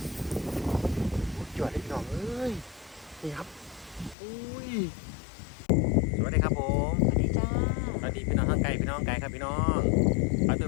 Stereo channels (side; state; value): right; drops out; at 4.2 s